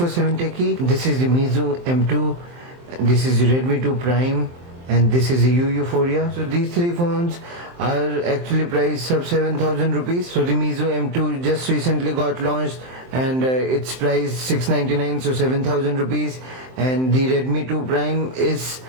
Techie. This is the Meizu M2, this is the Redmi 2 Prime, and this is the Euphoria. So these three phones are actually priced sub 7,000 rupees. So the Meizu M2 just recently got launched and it's priced 699, so 7,000 rupees, and the Redmi 2 Prime is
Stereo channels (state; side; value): late; left; 23 ms